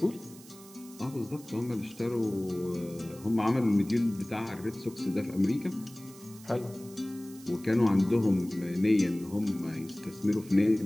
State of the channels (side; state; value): right; noise; hiss, 20 dB below the sound